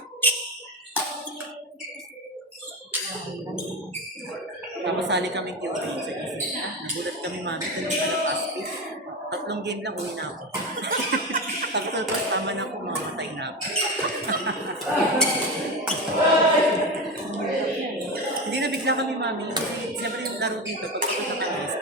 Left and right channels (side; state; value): both; normal; correlation 0.20